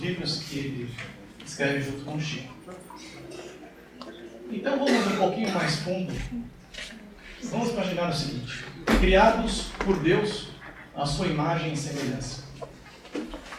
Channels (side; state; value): both; identical; correlation 1.00